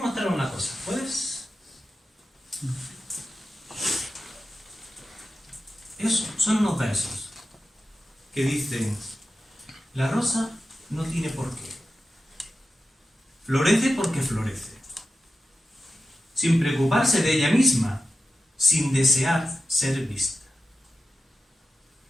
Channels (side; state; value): both; normal; correlation 0.93